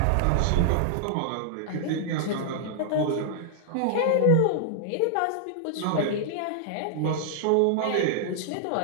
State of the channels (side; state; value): both; different; correlation -0.01